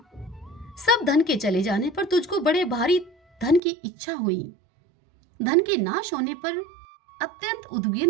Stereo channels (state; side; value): drops out; left; at 3.6 s